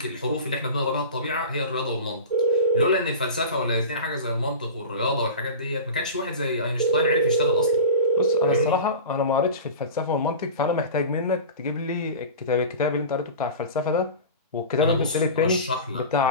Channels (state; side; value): inverted; both; correlation -0.33